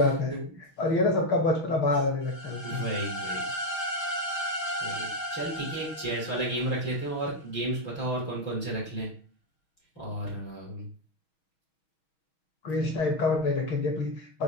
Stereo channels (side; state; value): right; late; 6.3 ms